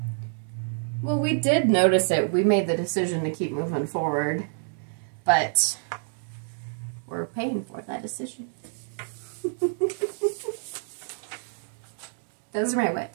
Well, we did notice it. We made the decision to keep moving forward, but we're paying for that decision. Those are my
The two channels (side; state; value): left; silent; 60 dB below the other